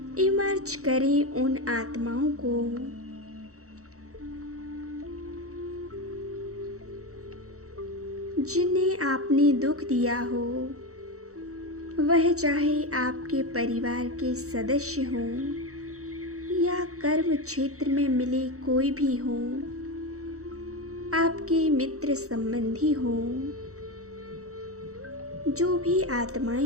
इमर्ज करें उन आत्माओं को जिन्हें आपने दुख दिया हो, वह चाहे आपके परिवार के सदस्य हों कर्म क्षेत्र में मिले कोई भी हो, आपके मित्र संबंधी हों, जो भी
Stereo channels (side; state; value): left; late; 0.65 ms